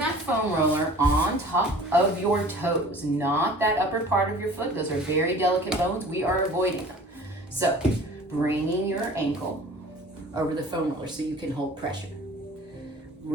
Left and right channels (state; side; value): normal; both; correlation 0.45